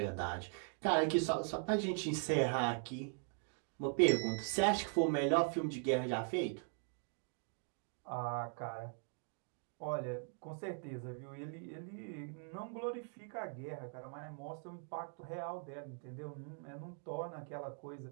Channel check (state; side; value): silent; left; 51 dB below the other